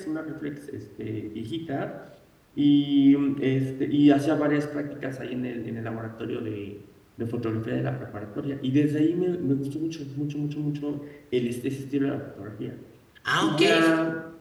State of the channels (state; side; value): identical; both; correlation 1.00